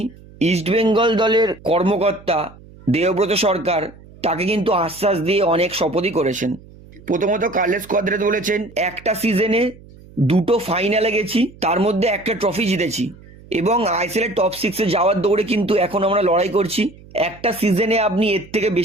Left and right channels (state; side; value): noise; right; hum, 22 dB below the sound